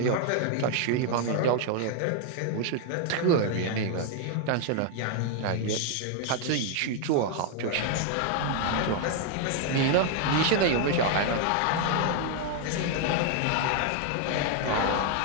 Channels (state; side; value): different; both; correlation 0.00